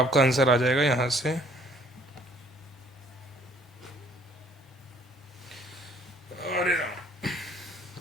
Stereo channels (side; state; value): both; normal; correlation 0.59